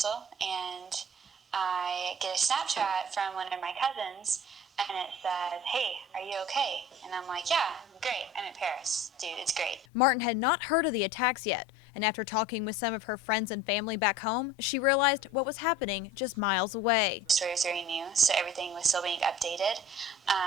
and I get a Snapchat from one of my cousins, and it says, "Hey, are you okay?" And I'm like, "Yeah, I'm great. I'm in Paris. Dude, it's great." Martin had not heard of the attacks yet, and after talking with some of her friends and family back home, she realized what was happening just miles away. The story was very new, so everything was still being updated.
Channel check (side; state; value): both; normal; correlation 0.42